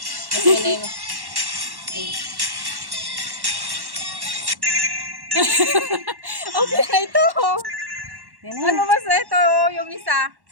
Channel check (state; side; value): late; left; 1.1 ms